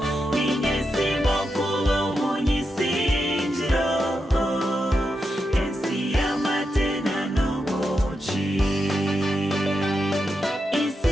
ninyesimo kuba umunyisingiro ensi y'amatena n'ubuki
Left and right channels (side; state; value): both; normal; correlation 0.86